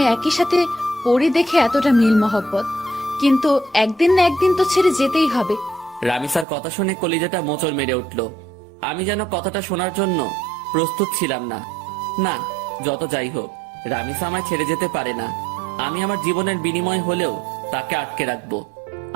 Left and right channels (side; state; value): left; drops out; at 6.5 s